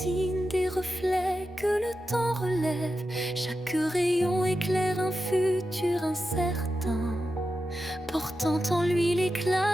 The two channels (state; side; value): normal; both; correlation 0.90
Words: des reflets que le temps relève. Chaque rayon éclaire un futur incertain, portant en lui